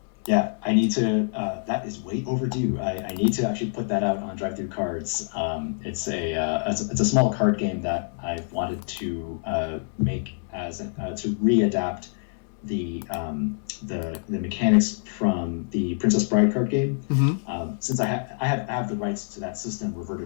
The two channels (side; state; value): right; silent; digital silence